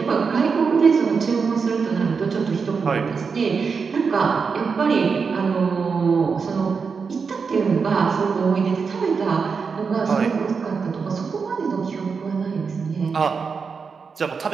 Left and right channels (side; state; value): left; quieter; 5.4 dB